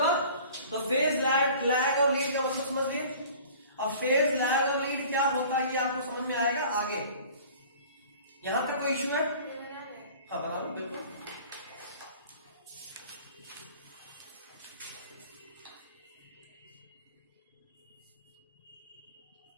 तो फेज लैग और लीड का मतलब समझ लिए। अब फेज लैग और लीड क्या होता है ये आपको समझ में आएगा आगे। यहां तक कोई इश्यू है? हाँ बता दो बिल्कुल।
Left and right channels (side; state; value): both; inverted; correlation -0.46